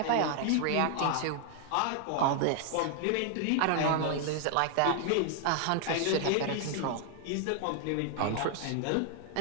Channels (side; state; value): both; different; correlation 0.00